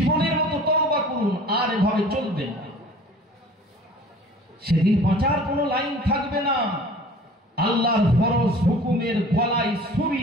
মতো তওবা করুন, আর এভাবে চলবে না। সেদিন বাঁচার কোনো লাইন থাকবে না। আল্লাহর ফরজ হুকুমের গলায়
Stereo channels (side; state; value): both; normal; correlation 0.46